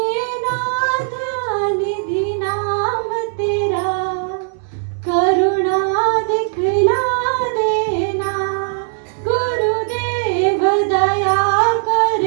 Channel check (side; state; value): left; silent; digital silence